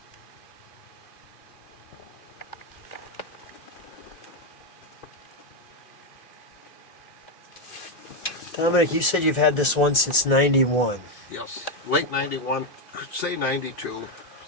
Dominic, you said you've had this one since 91. Yes, late 91, say 92.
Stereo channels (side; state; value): right; late; 2.5 ms